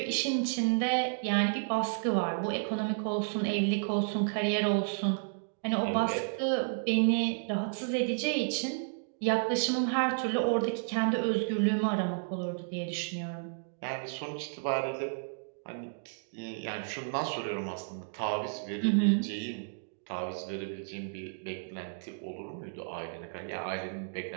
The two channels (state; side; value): silent; left; digital silence